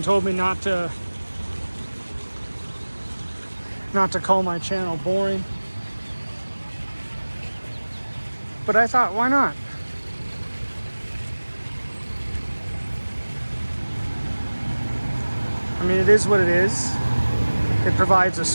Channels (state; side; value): inverted; both; correlation -1.00